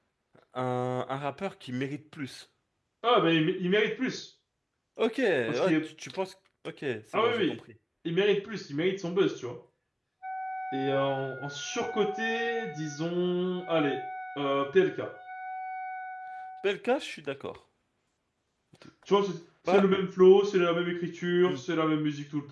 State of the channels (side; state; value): both; identical; correlation 1.00